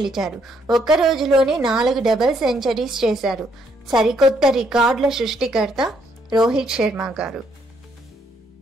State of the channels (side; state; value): both; normal; correlation 0.71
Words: ఒక్క రోజులోనే 4 డబుల్ సెంచరీస్ చేశారు. సరికొత్త రికార్డుల సృష్టికర్త రోహిత్ శర్మ గారు.